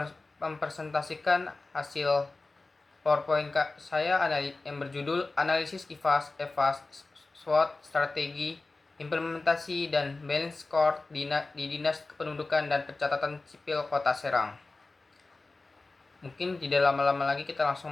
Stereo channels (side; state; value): right; quieter; 3.4 dB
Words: hasil PowerPoint saya yang berjudul Analisis IFAS, EVAS, SWOT, Strategi, Implementasi, dan Balance Score di Dinas Kependudukan dan Pencatatan Sipil Kota Serang. Mungkin tidak lama-lama lagi kita